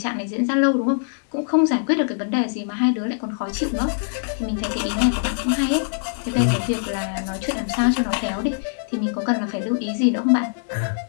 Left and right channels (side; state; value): right; silent; digital silence